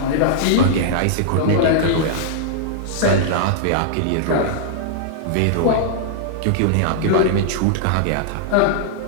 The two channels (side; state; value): both; different; correlation -0.01